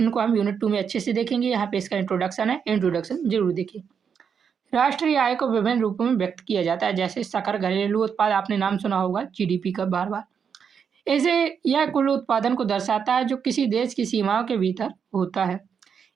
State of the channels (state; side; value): quieter; left; 6.9 dB